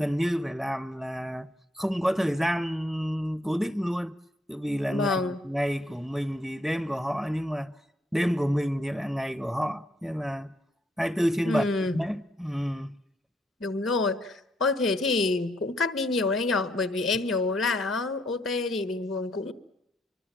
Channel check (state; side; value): normal; both; correlation 0.73